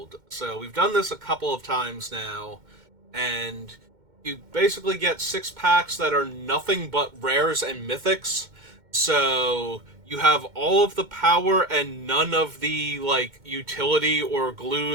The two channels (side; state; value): left; late; 2.1 ms